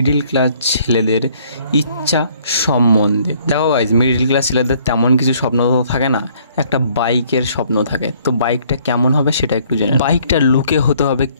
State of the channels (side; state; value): both; inverted; correlation -0.62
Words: ক্লাস ছেলেদের ইচ্ছা সম্বন্ধে। দেখো গাইস, মিডিল ক্লাস ছেলেদের তেমন কিছু স্বপ্ন তো থাকে না, একটা বাইকের স্বপ্ন থাকে। তো বাইকটা কেমন হবে সেটা একটু জেনে। বাইকটা লুকে হতে হবে